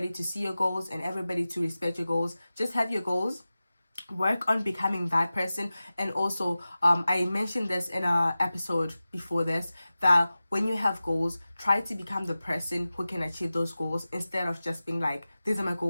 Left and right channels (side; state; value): both; inverted; correlation -0.96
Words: to see your goals and everybody to respect your goals, just have your goals. Work on becoming that person. And also I mentioned this in a episode before this, that when you have goals, try to become the person who can achieve those goals instead of just being like, these are my